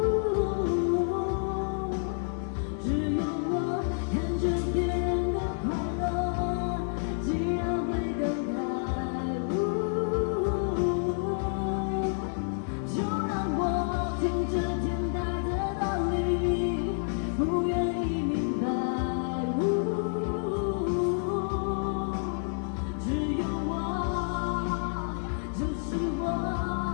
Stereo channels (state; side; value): silent; right; 58 dB below the other